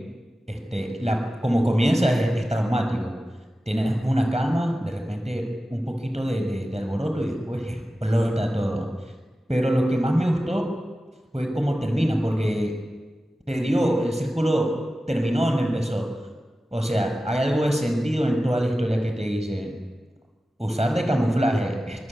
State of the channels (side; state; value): both; normal; correlation 0.94